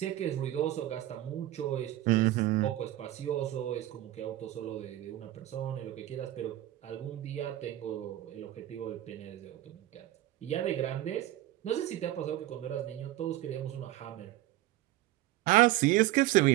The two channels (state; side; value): quieter; left; 15.1 dB